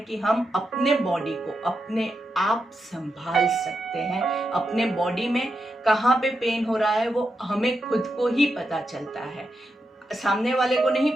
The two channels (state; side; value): normal; both; correlation 0.86